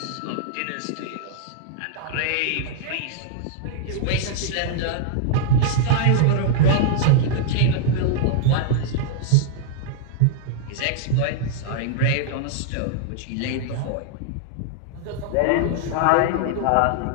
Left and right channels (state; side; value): different; both; correlation -0.01